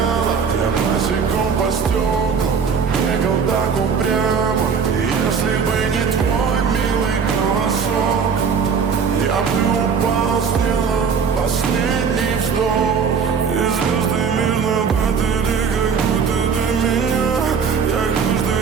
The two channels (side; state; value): left; quieter; 6.2 dB